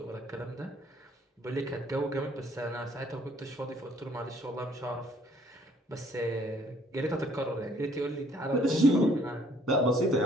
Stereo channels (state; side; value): normal; both; correlation 0.62